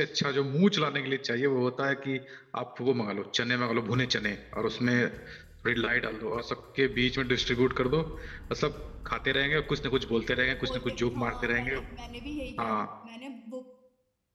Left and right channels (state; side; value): identical; both; correlation 1.00